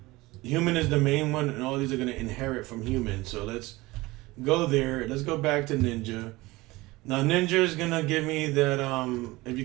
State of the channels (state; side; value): quieter; left; 20.7 dB